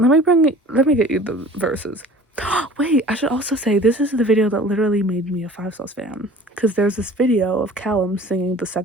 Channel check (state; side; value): normal; both; correlation 0.45